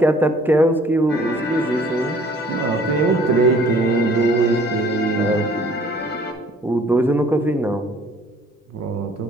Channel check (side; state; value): both; normal; correlation 0.55